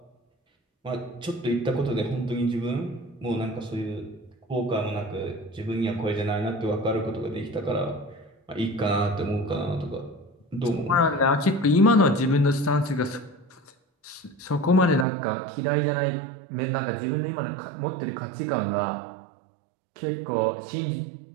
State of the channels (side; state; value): left; drops out; at 15.1 s